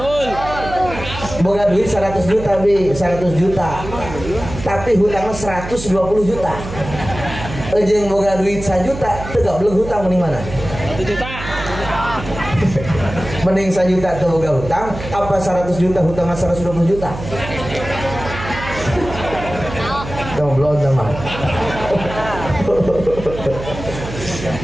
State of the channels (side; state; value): right; noise; hum, 10 dB below the sound